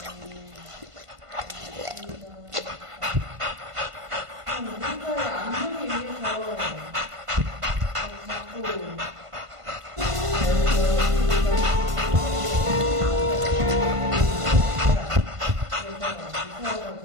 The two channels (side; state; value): left; late; 1.5 ms